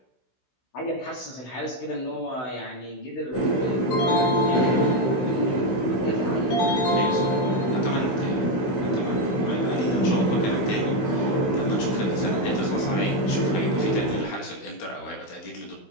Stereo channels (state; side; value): late; right; 16 ms